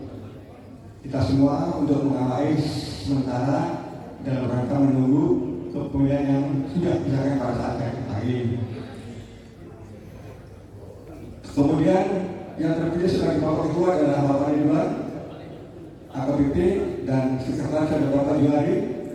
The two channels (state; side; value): identical; both; correlation 1.00